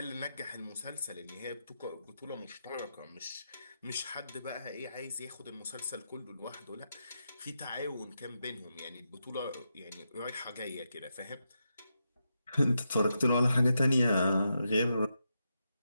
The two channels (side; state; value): both; inverted; correlation -0.85